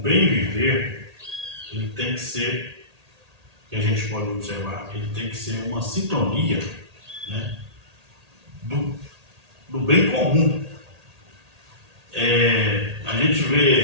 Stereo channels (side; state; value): left; late; 1.8 ms